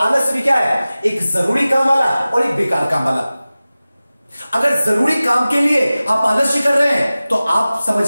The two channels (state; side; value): inverted; both; correlation -0.97